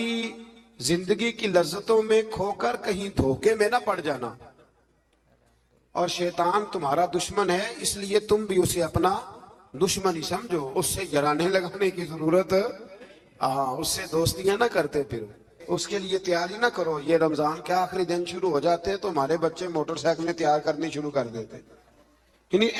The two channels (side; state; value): both; identical; correlation 1.00